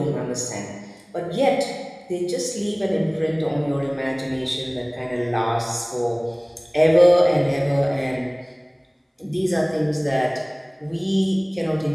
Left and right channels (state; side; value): identical; both; correlation 1.00